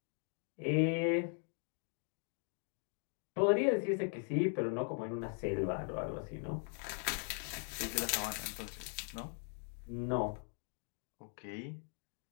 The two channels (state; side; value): silent; right; 51 dB below the other